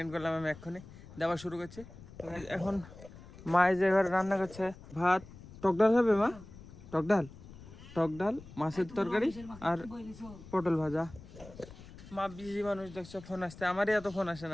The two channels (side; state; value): left; noise; rumble, 18 dB below the sound